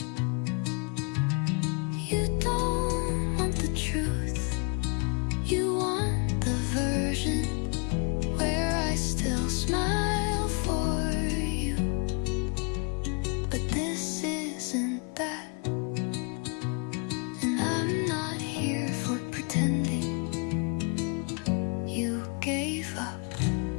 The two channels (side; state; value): right; quieter; 34.9 dB